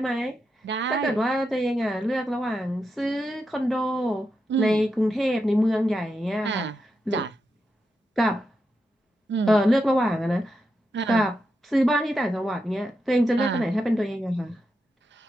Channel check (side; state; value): both; normal; correlation 0.86